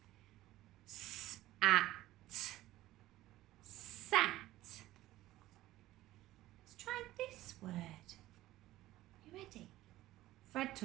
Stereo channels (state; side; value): quieter; left; 15.9 dB